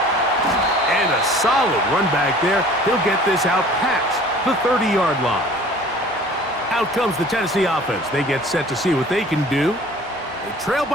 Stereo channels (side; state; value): both; normal; correlation 0.48